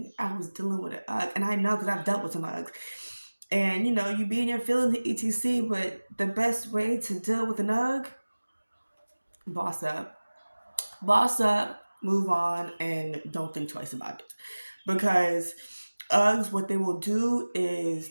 I was dealing with an UGG, and I know because I've dealt with some UGGs. And you be in your feelings, etc. But the best way to deal with an UGG, boss up, boss up, move on, and don't think twice about it, because Uggs, what they will do is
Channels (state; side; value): inverted; both; correlation -1.00